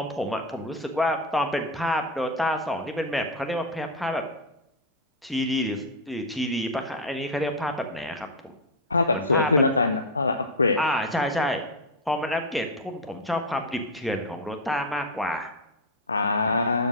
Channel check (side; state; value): both; normal; correlation 0.03